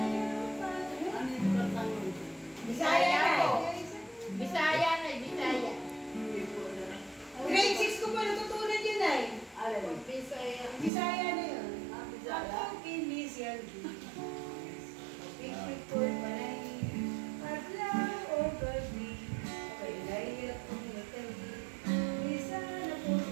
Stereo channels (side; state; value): left; drops out; at 10.9 s